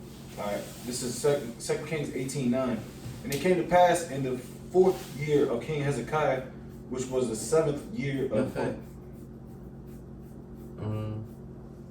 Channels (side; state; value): both; identical; correlation 1.00